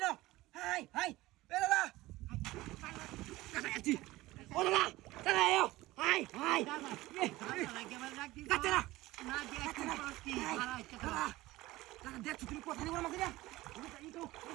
হাই, এ দাদা, কাটাচ্ছি, ও দাদা, চলে এও, হাই, কাটে না, না দেখছি কি, দাদা, দেখছি তুমি কথা নিয়ে বড় মাছ দিয়া, এই তো,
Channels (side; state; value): left; quieter; 18.3 dB